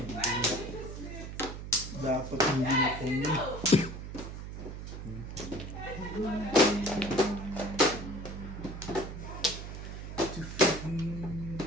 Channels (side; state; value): right; noise; hum, 8 dB below the sound